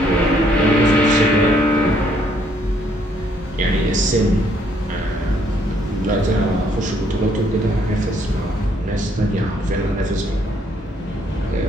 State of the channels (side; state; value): both; normal; correlation 0.68